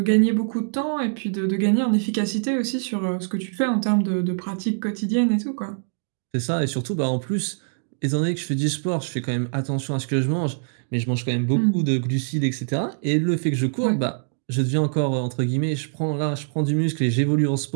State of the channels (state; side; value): silent; left; digital silence